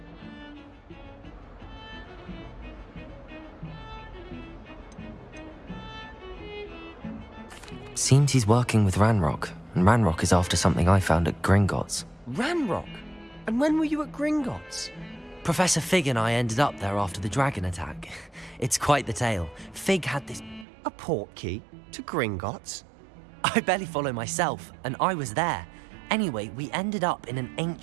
Seems he's working with Ranrock, and Ranrock is after something I found at Gringotts. Ranrock? And when were you at Gringotts? Professor Fig and I ended up there after the dragon attack. It's quite the tale. Fig had this... A portkey to Gringotts? I barely follow myself, and I was there. Anyway, we ended up in an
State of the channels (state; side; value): drops out; left; at 20.7 s